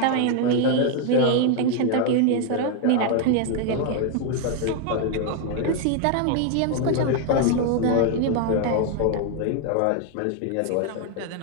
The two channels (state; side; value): different; both; correlation 0.00